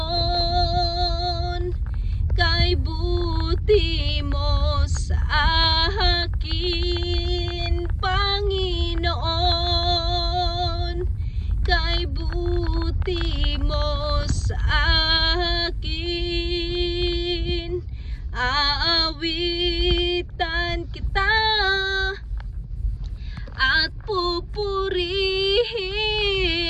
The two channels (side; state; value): both; identical; correlation 1.00